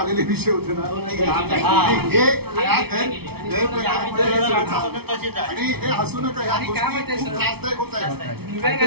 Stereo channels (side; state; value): left; late; 0.96 ms